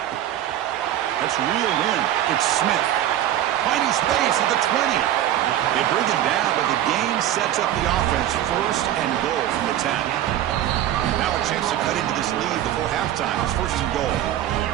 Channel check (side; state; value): left; quieter; 12.2 dB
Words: That's reeled in. It's Smith. Finding space at the 20. They bring him down, but the game sets up the offense first and goal from the 10. Now a chance to cut into this lead before halftime. It's first and goal.